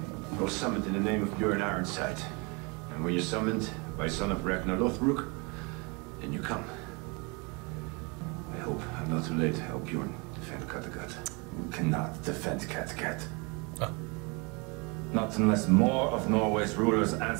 I was summoned in the name of Bjorn Ironside. And when you're summoned by son of Ragnar Lothbrok, then you come. I hope I'm not too late to help Bjorn defend Kattegat. You cannot defend Kattegat. Oh. Not unless more of Norway's rulers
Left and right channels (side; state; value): left; quieter; 30.0 dB